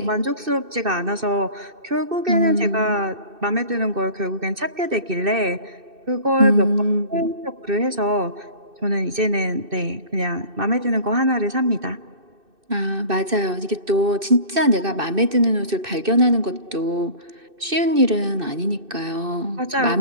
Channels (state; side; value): late; left; 2.6 ms